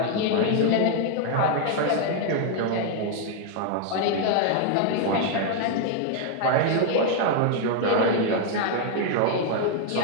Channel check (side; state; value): both; different; correlation 0.00